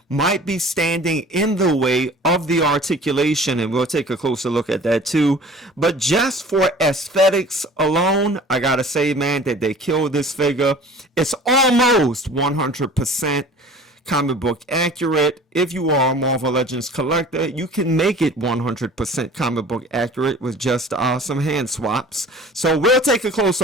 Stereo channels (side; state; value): both; normal; correlation 0.45